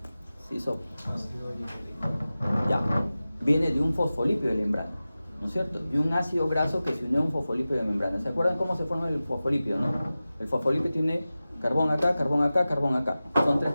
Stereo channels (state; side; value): inverted; both; correlation -0.96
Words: se hizo. Ya, viene de un fosfolípido de membrana, ¿no es cierto? De un ácido graso que se unió a un fosfolípido de membrana. ¿Se acuerdan cómo se forma el fosfolípido, no? El fosfolípido tiene carbón acá, carbón acá, carbón acá. Son 3